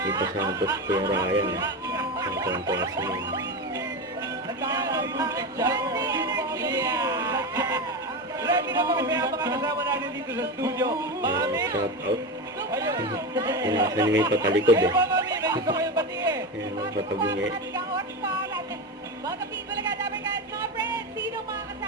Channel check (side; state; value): both; normal; correlation 0.19